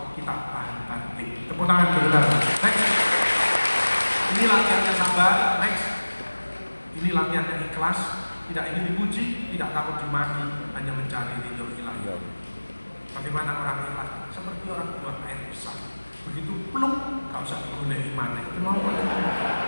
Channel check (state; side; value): inverted; both; correlation -1.00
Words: kita tahan banting. Tepuk tangan dulu. Next. Ini latihannya sabar. Next. Ini latihannya ikhlas, tidak ingin dipuji, tidak takut dimaki, hanya mencari ridho ilahi. Bagaimana orang ikhlas? Seperti orang buang air besar. Begitu plung, gak usah digoleki maneh. Mau